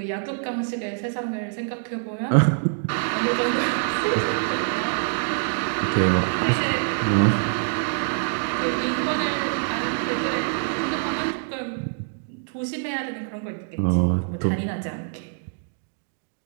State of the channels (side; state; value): left; silent; digital silence